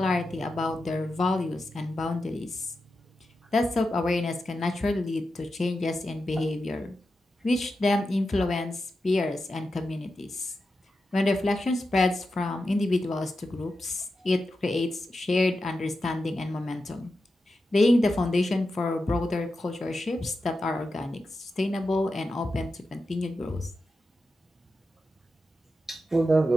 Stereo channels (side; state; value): both; normal; correlation 0.90